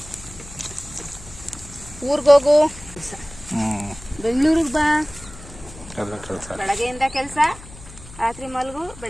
ಊರ್ಗೋಗು, ಬೆಂಗಳೂರಿಗೆ ಬಾ, ಬೆಳಗ್ಗೆಯಿಂದ ಕೆಲಸ, ರಾತ್ರಿ ಮಲಗು,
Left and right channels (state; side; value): noise; left; hum, 17 dB below the sound